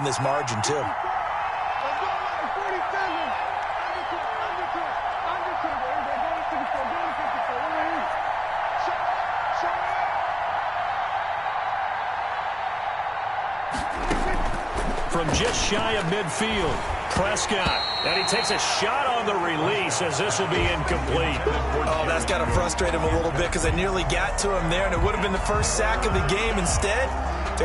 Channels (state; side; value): identical; both; correlation 1.00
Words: this margin too. From just shy of midfield, Prescott. And he takes a shot on the release as this will be incomplete. Oh, that's got to frustrate him a little bit, because they nearly got to him there, and it would have been the first sack of the game. Instead,